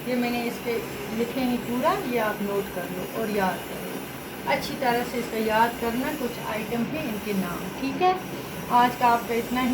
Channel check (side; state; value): both; identical; correlation 1.00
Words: ये मैंने इसके लिखे हैं पूरा, ये आप नोट कर लो और याद कर लो अच्छी तरह से। इसका याद करना, कुछ आइटम हैं, इनके नाम, ठीक है। आज का आपका इतना